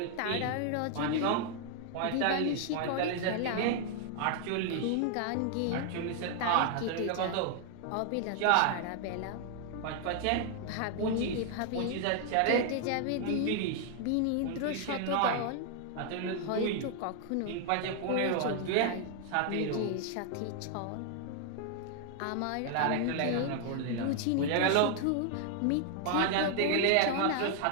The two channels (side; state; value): both; different; correlation 0.00